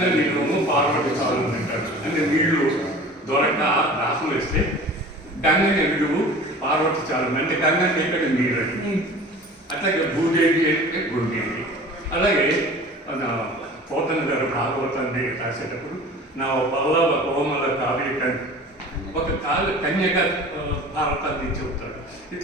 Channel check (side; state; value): both; normal; correlation 0.41